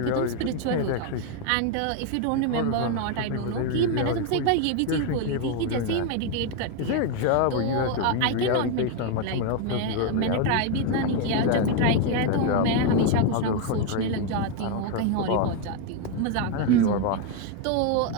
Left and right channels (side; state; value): both; different; correlation 0.01